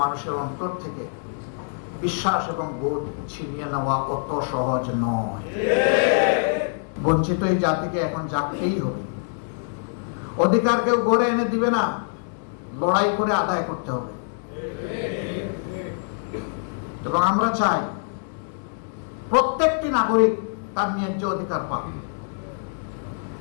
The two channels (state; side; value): silent; right; 62 dB below the other